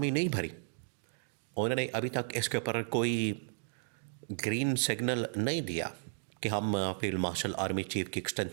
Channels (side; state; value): left; silent; digital silence